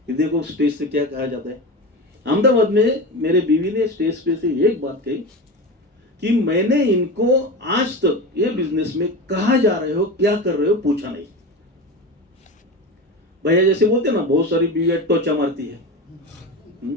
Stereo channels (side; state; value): both; normal; correlation 0.25